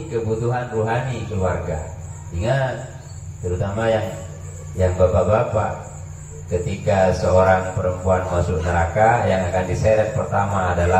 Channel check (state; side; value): identical; both; correlation 1.00